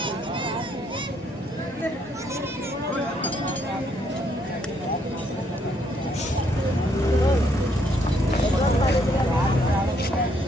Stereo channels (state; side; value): normal; both; correlation 0.71